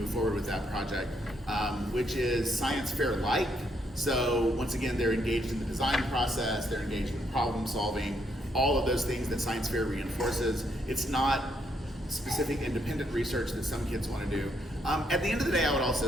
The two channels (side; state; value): both; normal; correlation 0.74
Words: forward with that project, which is science fair-like. So once again, they're engaged in the design process, they're engaged in problem solving, all of those things that science fair reinforces. It's not specific independent research that some kids want to do. At the end of the day, I would also